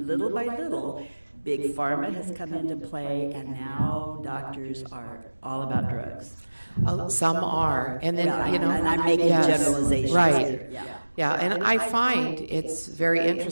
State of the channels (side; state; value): both; inverted; correlation -1.00